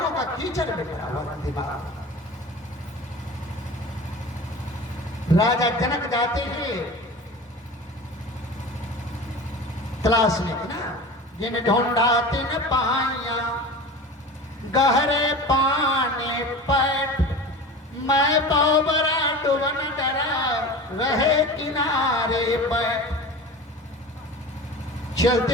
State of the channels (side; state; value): both; normal; correlation 0.34